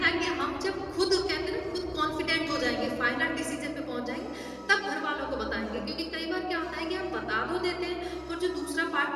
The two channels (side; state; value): both; identical; correlation 1.00